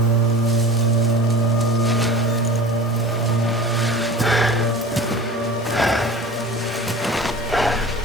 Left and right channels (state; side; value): normal; both; correlation 0.38